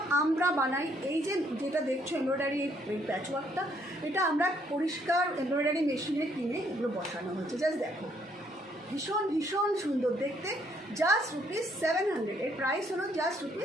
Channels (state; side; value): normal; both; correlation 0.68